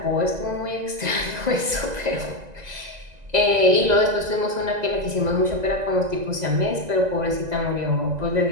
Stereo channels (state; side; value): late; left; 2.0 ms